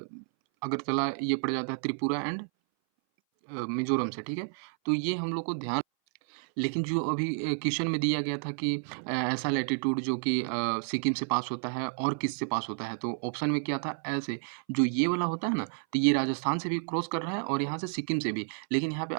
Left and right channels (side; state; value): left; silent; 57 dB below the other